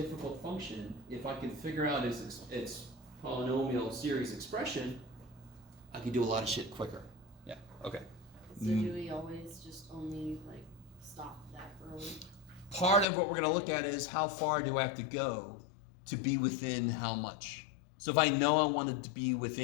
function, if I could figure out its polynomial series expression, I could do a lot of shit quicker. Yeah, okay. So do we always just only like stop that early? Part of what we're going to look at is how far do I have to go to be within how much. So if I know I wanted to be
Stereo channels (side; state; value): right; drops out; at 13.1 s